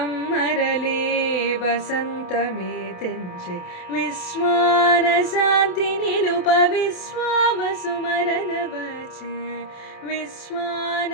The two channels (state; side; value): late; right; 28 ms